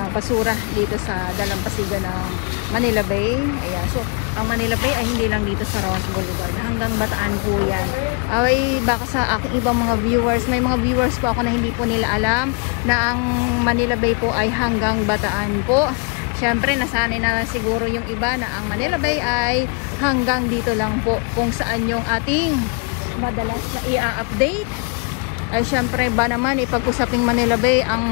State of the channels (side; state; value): right; quieter; 33.1 dB